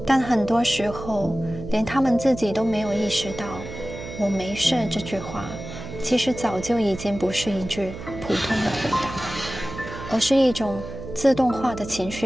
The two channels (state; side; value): noise; right; hum, 11 dB below the sound